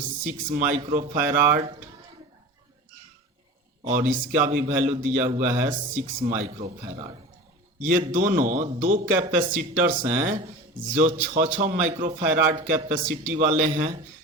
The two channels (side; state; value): both; normal; correlation 0.34